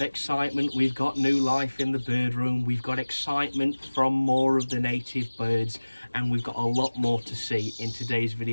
We've got new life in the bird room. We've got excitement from more of the native birds, and we've got a lot more to see in today's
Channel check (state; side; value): inverted; both; correlation -1.00